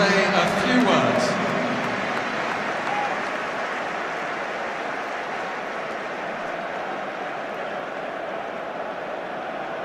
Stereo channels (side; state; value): both; identical; correlation 1.00